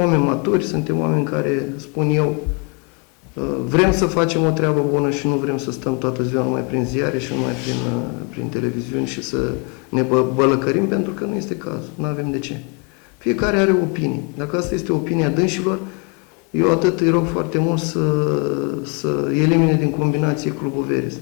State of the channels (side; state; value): right; quieter; 34.3 dB